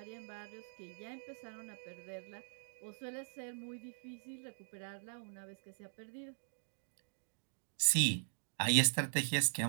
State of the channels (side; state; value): left; silent; digital silence